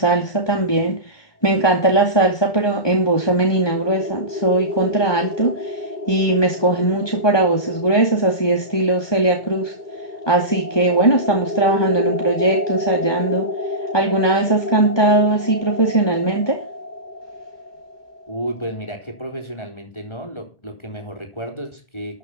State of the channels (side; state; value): right; late; 1.2 ms